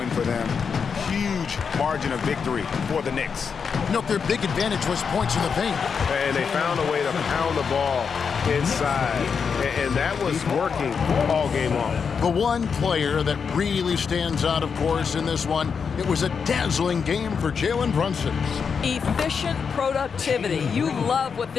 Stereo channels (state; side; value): quieter; right; 6.1 dB